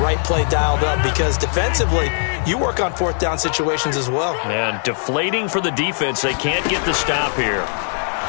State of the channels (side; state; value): right; silent; digital silence